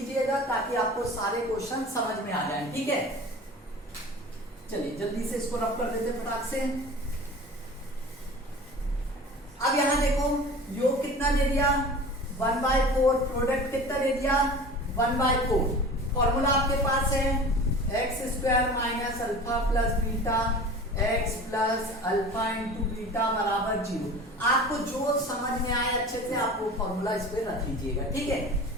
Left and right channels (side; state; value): both; normal; correlation 0.38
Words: ताकि आपको सारे क्वेश्चन समझ में आ जाए, ठीक है। चलिए जल्दी से इसको रब कर देते फटाक से। अब यहां देखो योग कितना दे दिया 1/4, प्रोडक्ट कितना दे दिया 1/4। फॉर्मूला आपके पास है x² minus alpha plus beta x plus alpha into beta बराबर 0। आपको जो समझ में आए अच्छे से आप वो फॉर्मूला इस पे रख लीजिएगा, ठीक है।